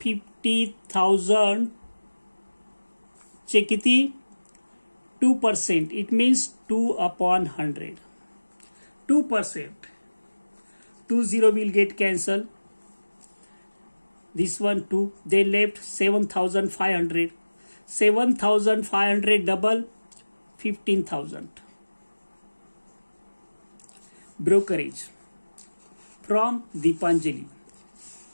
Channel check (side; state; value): both; inverted; correlation -1.00